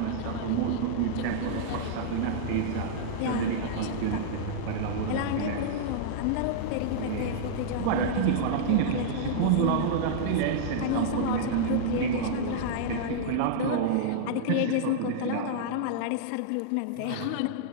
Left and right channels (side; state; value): both; different; correlation -0.02